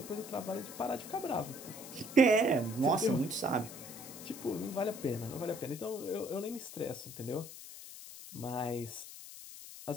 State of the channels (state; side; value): noise; left; hiss, 13 dB below the sound